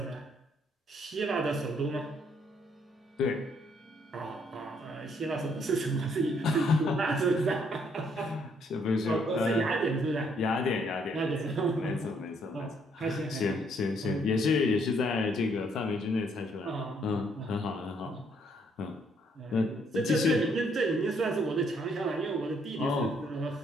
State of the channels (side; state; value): both; normal; correlation 0.69